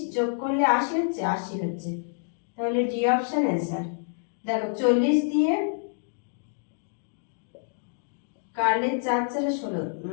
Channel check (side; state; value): right; silent; digital silence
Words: যোগ করলে 80 হচ্ছে, 80 হচ্ছে, তাহলে ডি অপশন आंसर। দেখো 40 দিয়ে কাটলে 4 4 16,